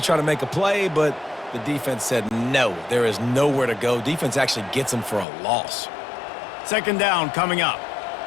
try to make a play, but the defense said no, there is nowhere to go. Defense actually gets him for a loss. 2nd down coming up.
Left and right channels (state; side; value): drops out; right; at 5.2 s